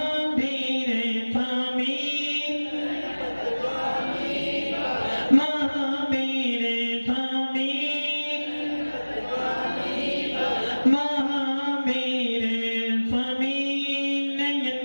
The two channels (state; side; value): inverted; both; correlation -1.00